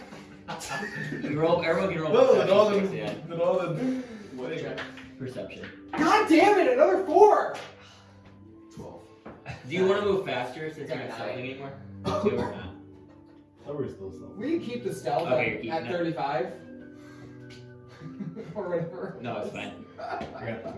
you roll. Everyone can roll perception checks, yeah. Perception. God damn it! Another 4. 12. Do you want to move faster since you're not stealthing anymore? 2 or not? Tower is still stealth. We can keep the stealth Okay, you're keeping at it. 35. Or whatever. No, it's fine. I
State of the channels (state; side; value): identical; both; correlation 1.00